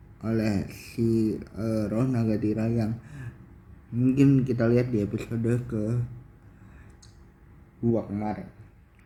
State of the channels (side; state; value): both; identical; correlation 1.00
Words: oleh si roh naga Tira yang mungkin kita lihat di episode ke-2 kemarin.